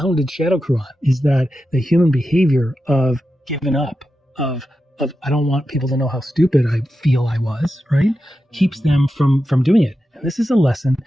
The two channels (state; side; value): normal; both; correlation 0.90